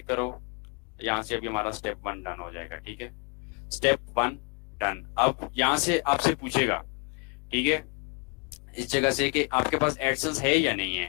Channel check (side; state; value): right; quieter; 31.7 dB